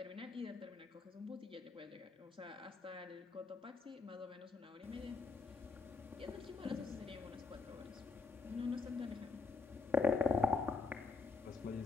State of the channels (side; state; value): right; quieter; 4.4 dB